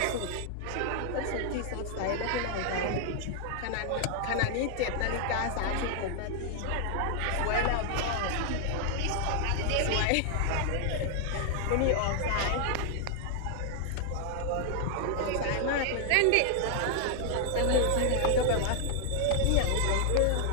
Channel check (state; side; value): different; both; correlation 0.00